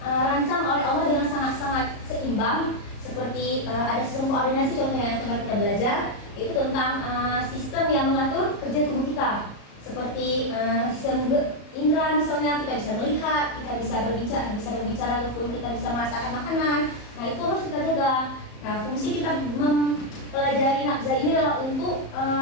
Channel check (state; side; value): late; right; 34 ms